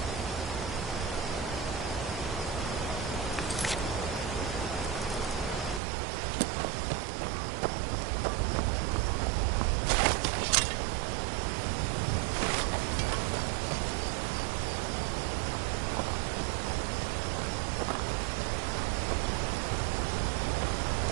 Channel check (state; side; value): drops out; left; at 5.8 s